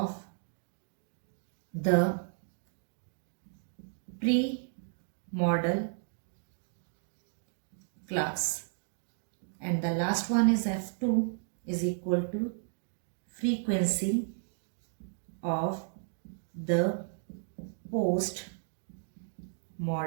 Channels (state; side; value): silent; left; digital silence